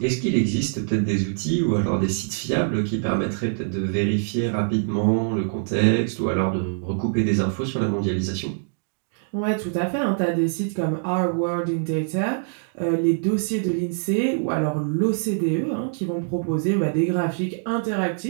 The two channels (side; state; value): left; silent; digital silence